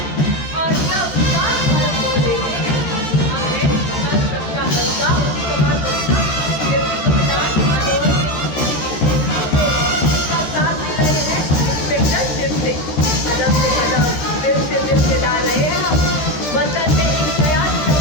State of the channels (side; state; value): right; late; 13 ms